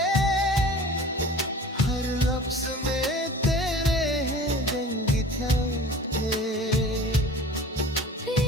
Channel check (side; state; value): both; normal; correlation 0.42